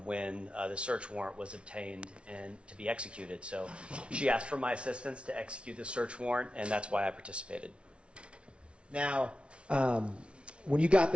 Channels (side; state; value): left; late; 0.059 ms